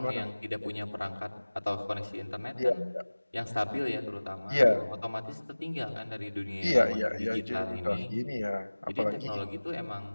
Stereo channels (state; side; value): inverted; both; correlation -1.00